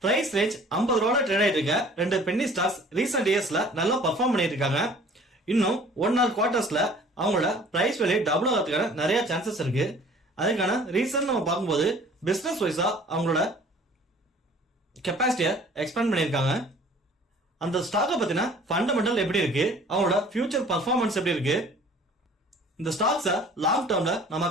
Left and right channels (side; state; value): both; normal; correlation 0.51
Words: பிரைஸ் ரேஞ்ச் 50 ரூபாய் ட்ரேட் ஆயிட்டு இருக்க ரெண்டு பென்னி ஸ்டாக்ஸ் ரீசெண்ட் இயர்ஸ்ல நல்லா பெர்ஃபார்ம் பண்ணிட்டு இருக்காங்க. இன்னும் 1 ஆர் குவார்டர்ஸ்ல அவங்களோட பிரைஸ் வேல்யூ டபுள் ஆகிறதுக்கான நிறைய சான்சஸ் இருக்கு. அதுக்கான ரீசன் நம்ம பார்க்கும்போது பிசினஸ் வைஸா அவங்களோட கெப்பாசிட்டியை எக்ஸ்பேண்ட் பண்ணியிருக்காங்க. அந்த ஸ்டாக்கை பத்தின ஃபண்டமெண்டல் எப்படி இருக்கு, அவங்களோட ஃபியூச்சர் பர்ஃபார்மன்ஸ் எப்படி இருக்கு, இந்த ஸ்டாக்ஸை லாங் டேர்ம்ல நம்ம